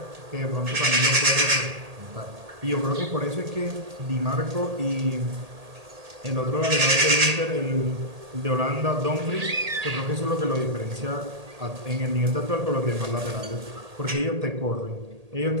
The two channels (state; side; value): late; left; 1.8 ms